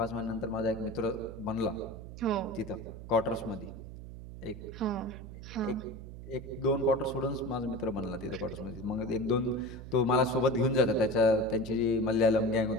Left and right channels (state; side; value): noise; right; hum, 12 dB below the sound